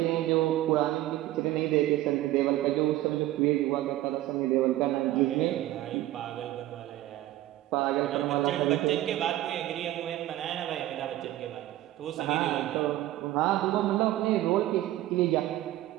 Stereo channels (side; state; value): left; quieter; 15.0 dB